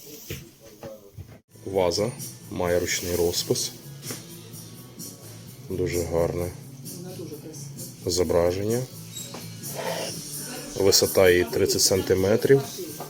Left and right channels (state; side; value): identical; both; correlation 1.00